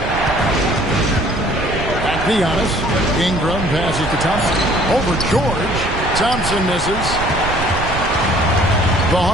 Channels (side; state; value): right; noise; rumble, 6 dB below the sound